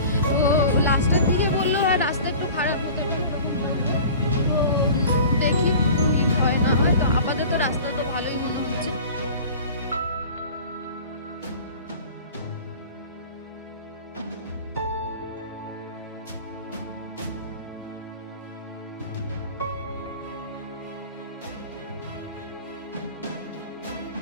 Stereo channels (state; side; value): inverted; both; correlation -0.41